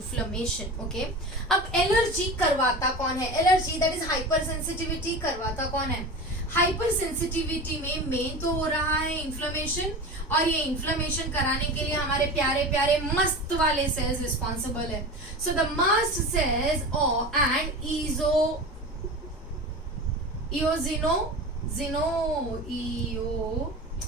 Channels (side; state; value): both; normal; correlation 0.30